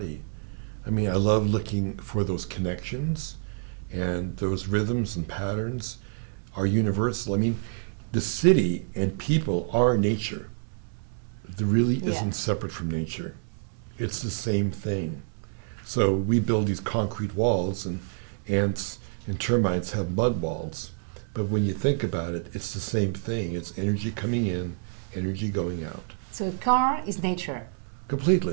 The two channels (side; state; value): left; silent; 60 dB below the other